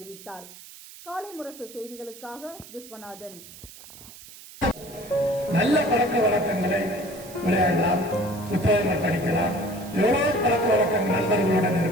காலை முரசு செய்திகளுக்காக விஸ்வநாதன். நல்ல பழக்க வழக்கங்களை விளையாடலாம், புத்தகங்கள் படிக்கலாம், எவ்வளவு பழக்க வழக்கங்கள் நண்பர்களுடன்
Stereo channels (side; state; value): right; noise; hiss, 18 dB below the sound